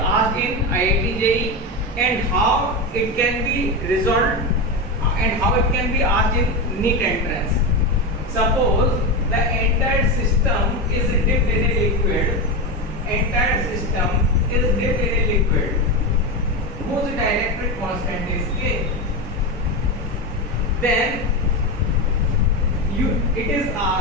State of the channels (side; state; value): both; normal; correlation 0.15